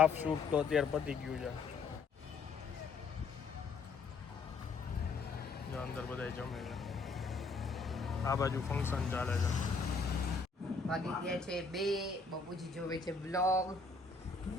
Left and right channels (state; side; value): quieter; right; 4.4 dB